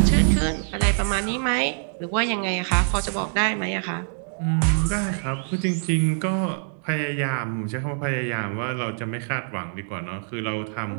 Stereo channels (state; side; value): silent; left; digital silence